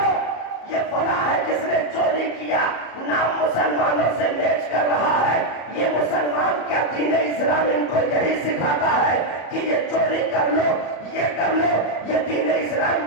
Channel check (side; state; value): right; late; 34 ms